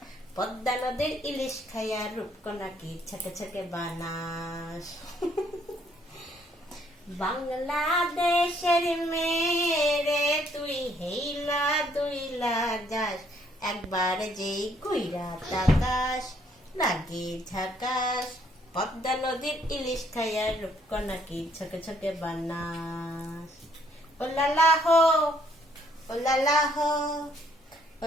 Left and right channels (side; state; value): both; normal; correlation 0.67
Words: পদ্মা নদীর ইলিশ খাইয়া রূপকণাকে ছকে ছকে বানাস। বাংলাদেশের মেরে তুই হেইলা দুইলা যাস, একবার যে ঘুইরা তাকাস লাগে ঝাকাস, পদ্মা নদীর ইলিশ খাইয়া রূপকণাকে ছকে ছকে বানাস। ও লালা হো, ও লালা হো, ও